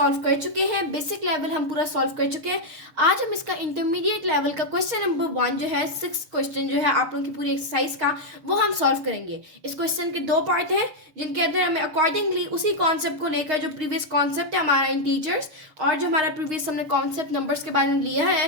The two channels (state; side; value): late; left; 6.5 ms